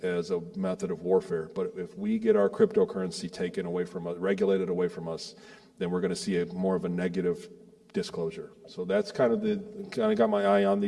a method of warfare. But if we get our cryptocurrency taken away from us, regulated away from us, then we're going to see more of a negative disclosure. So that's kind of got my eye on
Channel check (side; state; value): both; identical; correlation 1.00